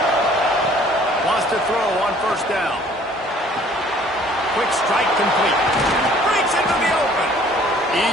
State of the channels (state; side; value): normal; both; correlation 0.55